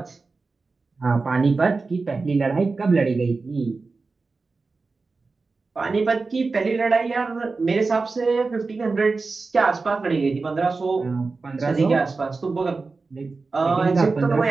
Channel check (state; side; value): quieter; left; 4.0 dB